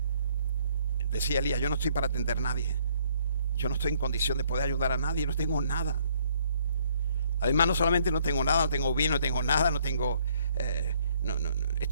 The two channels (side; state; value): both; inverted; correlation -0.65